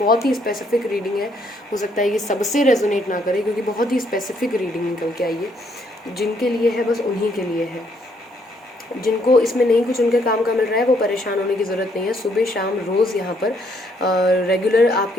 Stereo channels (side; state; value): both; normal; correlation 0.70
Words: ही स्पेसिफिक रीडिंग है, हो सकता है ये सबसे रेजोनेट ना करे, क्योंकि बहुत ही स्पेसिफिक रीडिंग निकल के आई है। जिनके लिए है बस उन्हीं के लिए है। जिनको इसमें नहीं कुछ उनके काम का मिल रहा है वो परेशान होने की ज़रूरत नहीं है। सुबह शाम रोज़ यहाँ पर रेगुलर